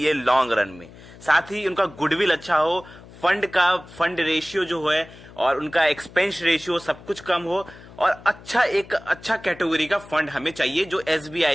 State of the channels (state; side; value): noise; left; hum, 20 dB below the sound